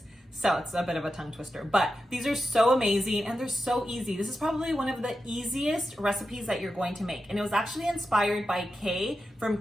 So it's a bit of a tongue twister, but these are so amazing and they're so easy. This is probably one of the easiest recipes that you're going to make. And it was actually inspired by Kay from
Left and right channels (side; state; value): both; normal; correlation 0.90